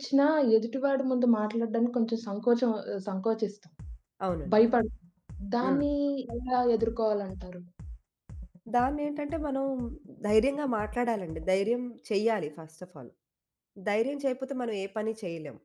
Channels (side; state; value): both; identical; correlation 1.00